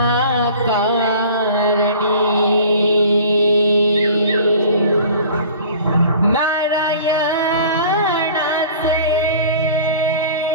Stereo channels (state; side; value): inverted; both; correlation -0.45